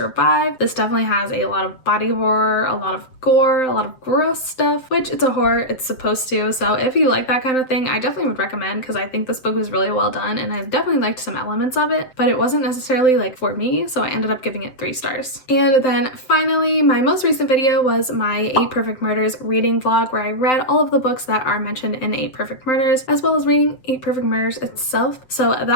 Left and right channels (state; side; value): late; right; 7.8 ms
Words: This definitely has a lot of body horror, a lot of gore, a lot of gross stuff, which it's a horror, it's supposed to. So if you like that kind of thing, I definitely would recommend, because I think this book was really well done and I definitely liked some elements of it, but it wasn't necessarily like for me, so I ended up giving it 3 stars. And then finally, my most recent video was my 8 Perfect Murders reading vlog, where I read all of the books that are mentioned in 8 Perfect Murders, as well as reading 8 Perfect Murders itself. So